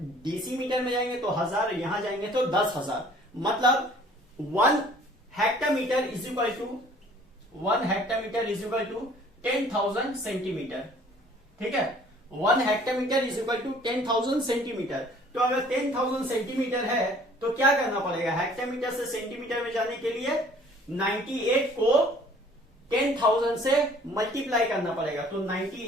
डेसीमीटर में जाएंगे तो 1000, यहां जाएंगे तो 10,000। मतलब 1 hectometre is equal to 10,000 centimetre, ठीक है। 1 hectometre is equal to 10,000 centimetre. तो अगर 10,000 सेंटीमीटर है तो क्या करना पड़ेगा, हेक्टोमीटर से सेंटीमीटर में जाने के लिए 98 को 10,000 से मल्टीप्लाई करना पड़ेगा। तो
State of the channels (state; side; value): normal; both; correlation 0.54